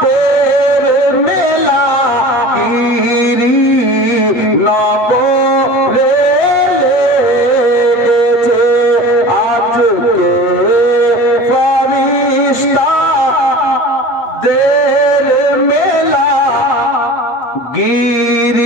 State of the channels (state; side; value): late; right; 8.5 ms